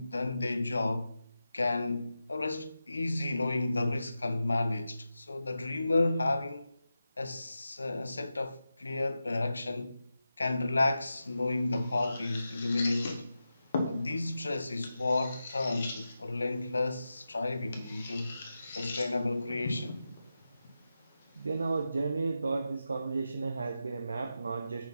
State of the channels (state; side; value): inverted; both; correlation -0.91